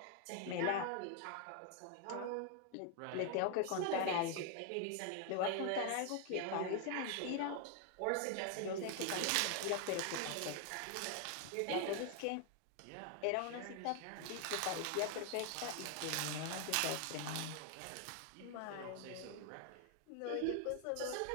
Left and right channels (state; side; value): different; both; correlation 0.00